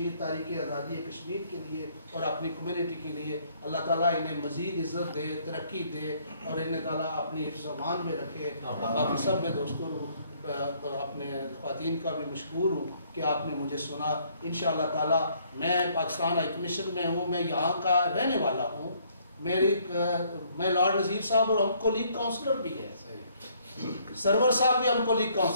تاریخ آزادی کشمیر کے لیے اور اپنی کمیونٹی کے لیے. اللہ تعالیٰ انہیں مزید عزت دے، ترقی دے، اور انہیں تعالیٰ اپنی حفظ و امان میں رکھے. باقی سب میں دوستوں اپنے خواتین کا بھی مشکور ہوں کہ آپ نے مجھے سنا. انشاءاللہ تعالیٰ میں پاکستان ہائی کمیشن میں ہوں، میں یہاں کا رہنے والا ہوں. میں لارڈ نذیر صاحب اور ہم کو لیگ کاؤنسلر بھی ہے، سرور صاحب بھی ہم کو لیگ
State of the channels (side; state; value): both; inverted; correlation -0.65